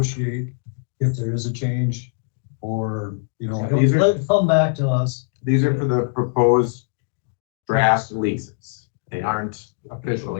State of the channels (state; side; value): silent; right; digital silence